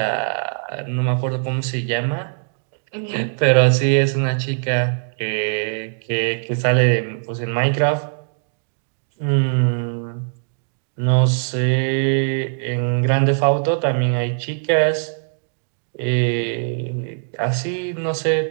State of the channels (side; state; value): left; silent; digital silence